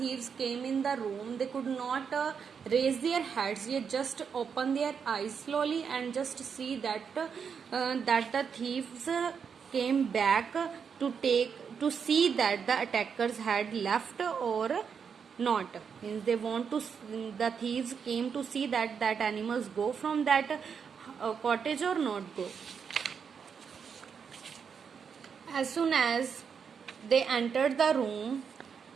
came in the room, they could not raise their heads. They just open their eyes slowly and just see that the thieves came back to see that the attackers had left or not. Means they want to, the thieves came to see that animals go from that cottage or not go. As soon as they entered the room,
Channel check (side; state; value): left; quieter; 6.6 dB